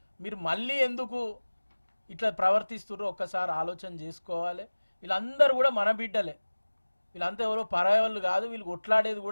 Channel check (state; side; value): inverted; both; correlation -1.00